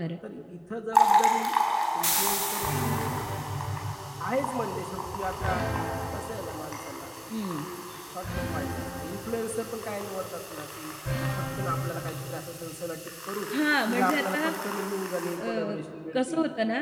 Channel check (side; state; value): both; identical; correlation 1.00